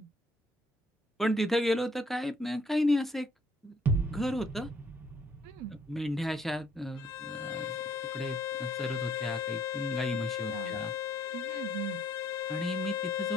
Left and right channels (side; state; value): both; normal; correlation 0.64